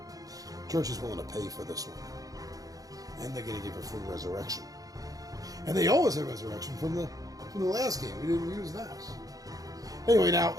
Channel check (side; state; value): left; late; 0.17 ms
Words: Church is willing to pay for this one. And they're going to give a free resurrection. And they always have resurrection from the last game. We didn't use that. Anyway, now